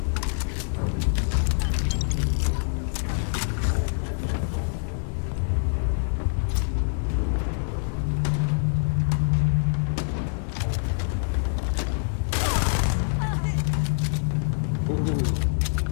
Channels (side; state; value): right; silent; digital silence